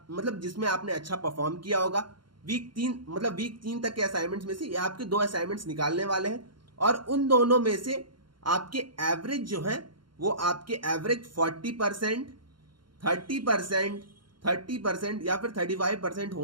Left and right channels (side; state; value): left; late; 0.72 ms